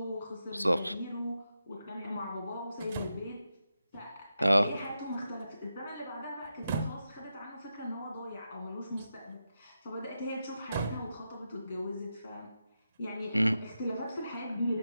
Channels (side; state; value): both; inverted; correlation -0.87